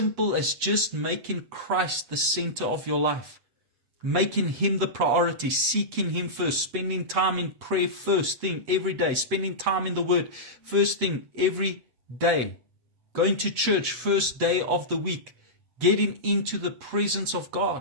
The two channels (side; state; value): left; late; 8.0 ms